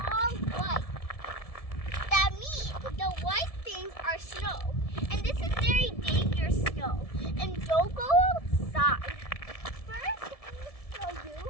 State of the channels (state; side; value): late; right; 1.7 ms